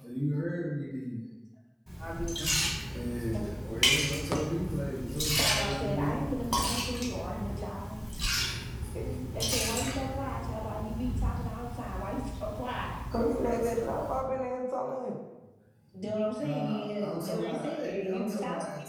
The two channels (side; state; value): both; identical; correlation 1.00